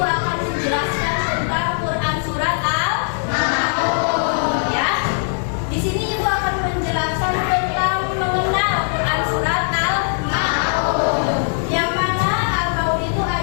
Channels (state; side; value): silent; right; 66 dB below the other